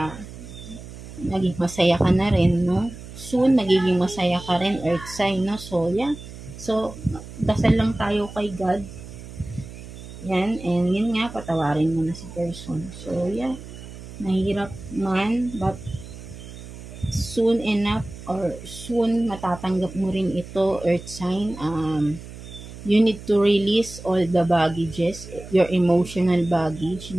naging masaya ka na rin, no? Soon, magiging masaya ka rin, earth sign, no? So, yeah. So, dasal lang tayo kay God. Yan, and yun nga, patawarin mo na si person. So, yeah. Mahirap man, but soon enough, or soon matatanggap mo rin ito, earth sign. You need to release all the baggages, your emotional baggage,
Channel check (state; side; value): noise; right; hum, 14 dB below the sound